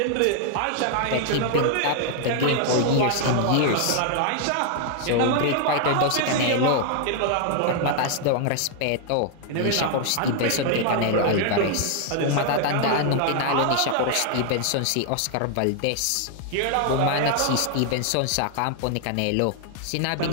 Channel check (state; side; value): different; both; correlation 0.00